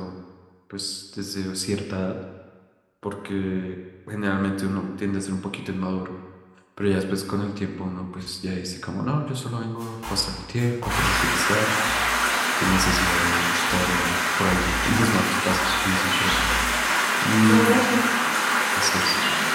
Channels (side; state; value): both; identical; correlation 1.00